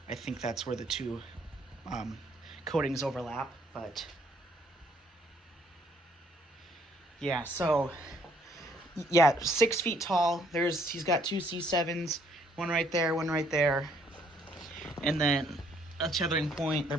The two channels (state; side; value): normal; both; correlation 0.65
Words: I think that's where the two coatings overlap, but yeah, so yeah, 6 feet tall. He's got 2 C7s, one right there, and then a tethering point. They're